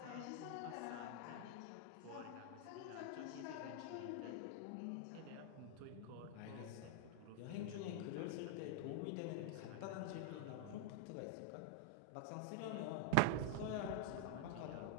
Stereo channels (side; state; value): both; different; correlation 0.00